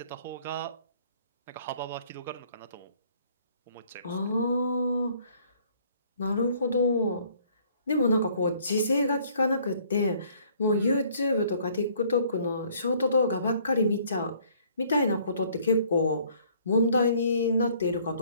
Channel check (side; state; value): both; inverted; correlation -0.60